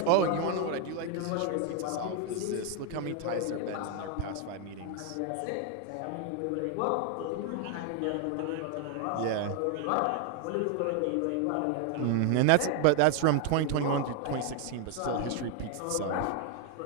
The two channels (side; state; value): both; different; correlation 0.00